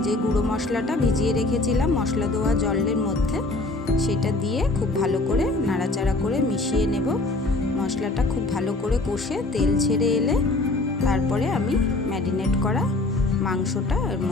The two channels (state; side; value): quieter; right; 3.0 dB